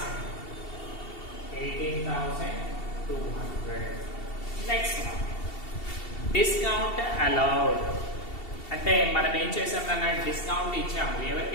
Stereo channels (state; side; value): late; right; 2.7 ms